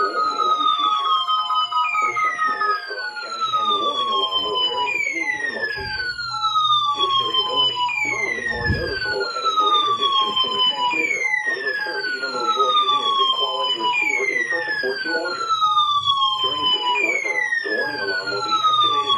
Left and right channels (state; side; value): identical; both; correlation 1.00